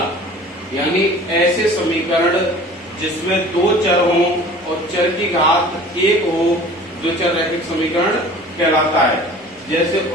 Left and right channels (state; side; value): normal; both; correlation 0.45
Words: यानी ऐसे समीकरण जिसमें दो चर हों और चर की घात 1 हो, द्विचर रैखिक समीकरण कहलाता है। जैसे